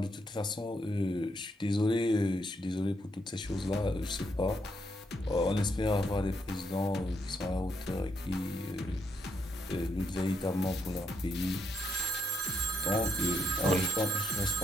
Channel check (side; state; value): both; normal; correlation 0.76